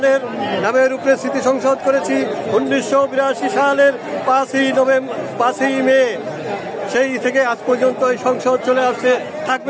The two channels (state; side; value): identical; both; correlation 1.00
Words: নামের উপরে স্মৃতি সংসদ করেছি 1982 সালের 5ই মে। সেই থেকে আজ পর্যন্ত এই সংসদ চলে আসছে,